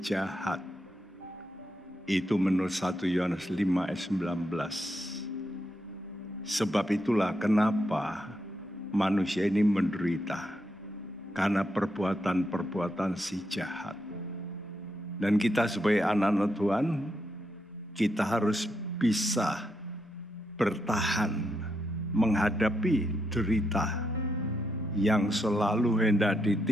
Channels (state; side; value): normal; both; correlation 0.81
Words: jahat. Itu menurut 1 Yohanes 5 ayat 19. Sebab itulah kenapa manusia ini menderita, karena perbuatan-perbuatan si jahat. Dan kita sebagai anak-anak Tuhan, kita harus bisa bertahan menghadapi derita yang selalu hendak